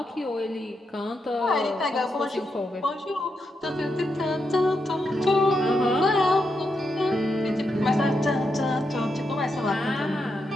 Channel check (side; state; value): both; normal; correlation 0.84